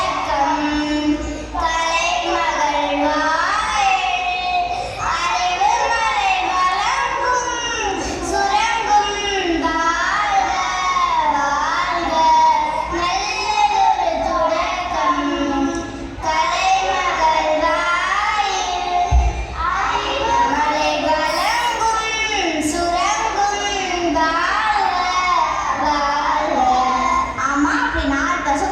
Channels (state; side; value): identical; both; correlation 1.00